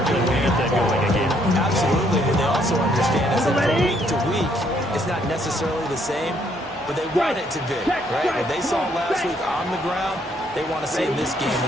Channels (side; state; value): both; normal; correlation 0.69